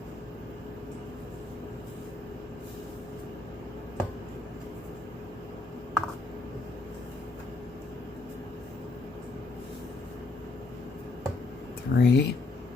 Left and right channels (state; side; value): quieter; right; 3.4 dB